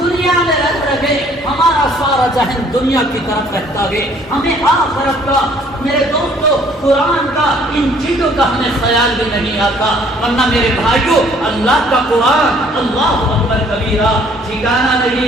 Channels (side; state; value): both; normal; correlation 0.59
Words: میں رہ رہے، ہمارا سارا ذہن دنیا کی طرف رہتا ہے، ہمیں آخرت کا میرے دوستو قرآن کا ان چیزوں کا ہمیں خیال بھی نہیں آتا۔ ورنہ میرے بھائیوں اللہ کا قرآن اللہ اکبر کبیرہ ٹھکانہ